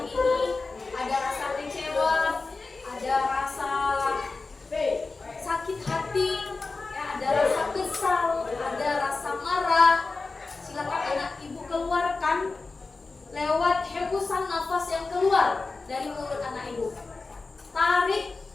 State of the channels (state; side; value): quieter; right; 3.8 dB